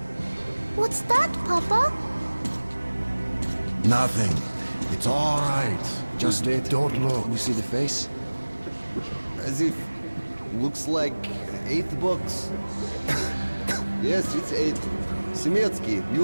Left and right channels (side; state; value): both; inverted; correlation -1.00